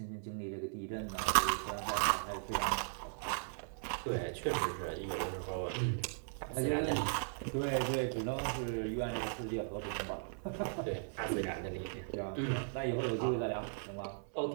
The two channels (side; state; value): left; silent; 53 dB below the other